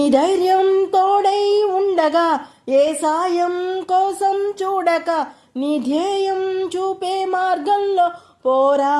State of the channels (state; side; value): identical; both; correlation 1.00